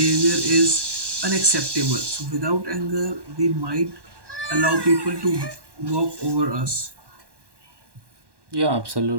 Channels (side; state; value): left; late; 1.1 ms